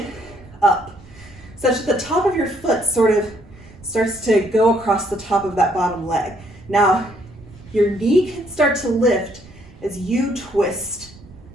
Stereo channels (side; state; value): right; noise; rumble, 21 dB below the sound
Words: up, such that the top of your foot sort of starts to go across the top of that bottom leg. Now, your knee can start to lift as you twist